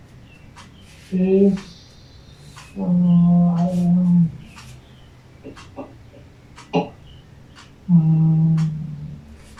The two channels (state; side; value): identical; both; correlation 1.00